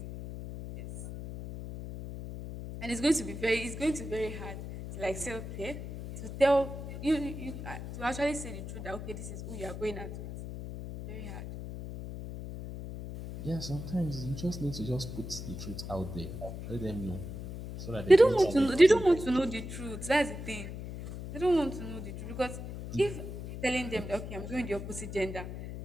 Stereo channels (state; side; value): noise; left; hum, 8 dB below the sound